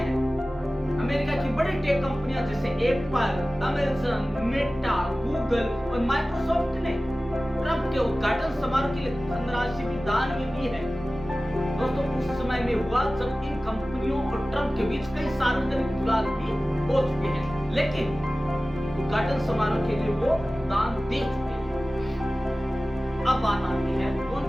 अमेरिका की बड़ी टेक कंपनियां जैसे एप्पल, अमेजन, मेटा, गूगल और माइक्रोसॉफ्ट ने ट्रंप के उद्घाटन समारोह के लिए धनराशि भी दान में दी है। दोस्तों उस समय में हुआ जब इन कंपनियों और ट्रंप के बीच कई सार्वजनिक विवाद भी हो चुके हैं, लेकिन उद्घाटन समारोह के लिए वो दान दे चुके हैं। अब बात आती है कौन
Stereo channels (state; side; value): normal; both; correlation 0.97